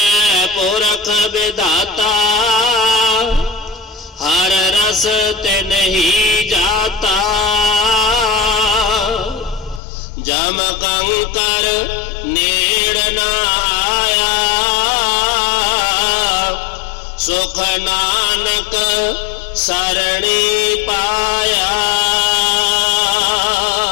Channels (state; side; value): drops out; right; at 9.8 s